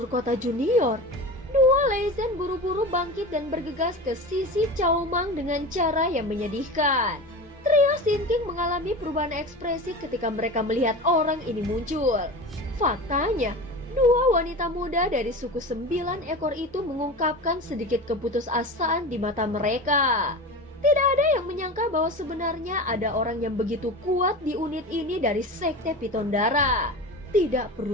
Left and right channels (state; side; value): normal; both; correlation 0.30